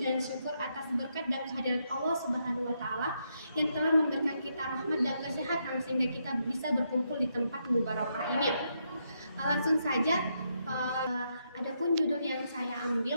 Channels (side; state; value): both; inverted; correlation -0.79